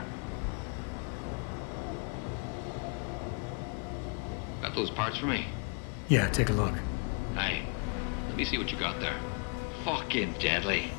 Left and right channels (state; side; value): quieter; right; 37.3 dB